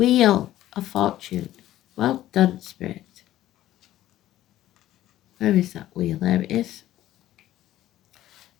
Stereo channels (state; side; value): quieter; right; 13.8 dB